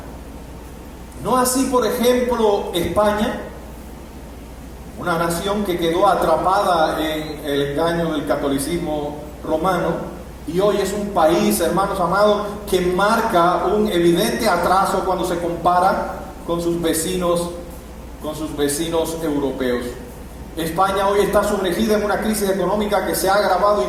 No así, por ejemplo, España, una nación que quedó atrapada en el engaño del catolicismo romano, y hoy es un país, hermanos amados, que marca un evidente atraso cuando se compara con sus vecinos europeos. España hoy está sumergida en una crisis económica que se ha agravado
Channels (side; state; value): both; identical; correlation 1.00